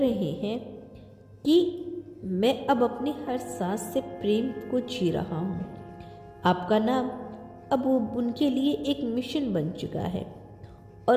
हैं कि मैं अब अपनी हर सांस से प्रेम को जी रहा हूँ? आपका नाम अब उनके लिए एक मिशन बन चुका है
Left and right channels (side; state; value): both; identical; correlation 1.00